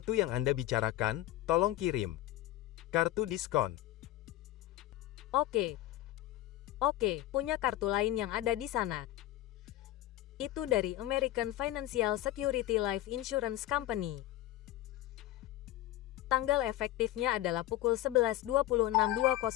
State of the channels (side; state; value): right; quieter; 14.9 dB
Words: yang Anda bicarakan, tolong kirim. Kartu diskon. Oke, punya kartu lain yang ada di sana. Itu dari American Financial Security Life Insurance Company. Tanggal efektifnya adalah pukul